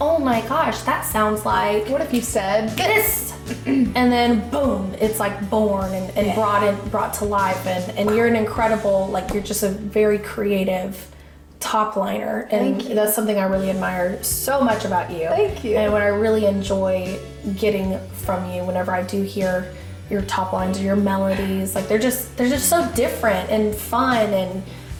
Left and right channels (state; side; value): identical; both; correlation 1.00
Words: my gosh, that sounds like. What if you said this? And then boom, it's like born and brought to life, and you're an incredible, like, you're just a very creative top liner, and that's something I really admire so much about you. Thank you. And what I really enjoy getting from you whenever I do hear your top lines or your melodies, like they're just so different and fun